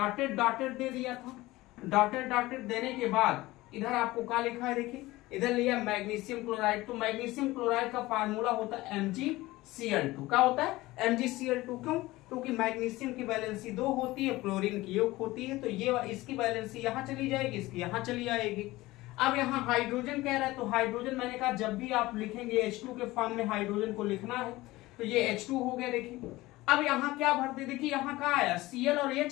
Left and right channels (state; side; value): quieter; right; 18.9 dB